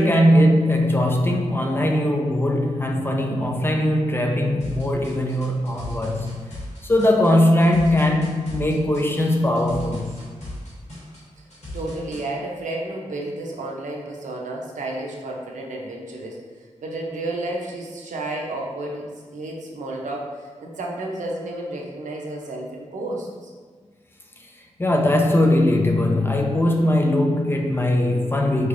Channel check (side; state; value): both; normal; correlation 0.85